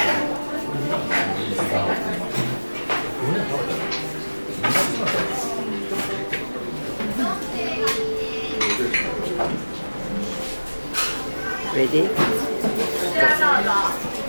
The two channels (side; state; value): both; inverted; correlation -1.00